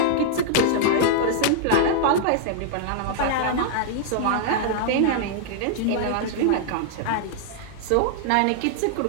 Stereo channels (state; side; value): different; both; correlation -0.01